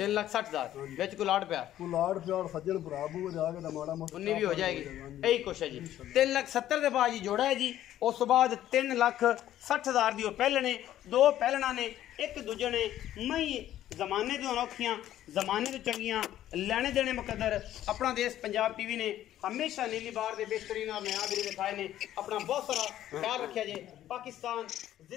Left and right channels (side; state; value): right; quieter; 12.5 dB